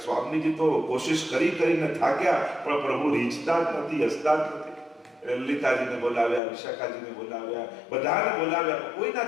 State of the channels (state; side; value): drops out; right; at 6.4 s